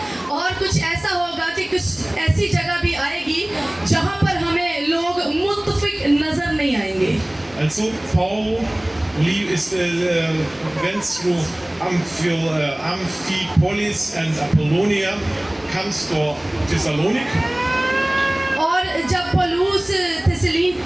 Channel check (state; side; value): noise; right; hum, 30 dB below the sound